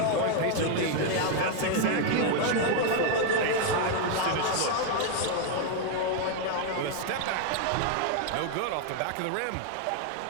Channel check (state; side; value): different; both; correlation 0.01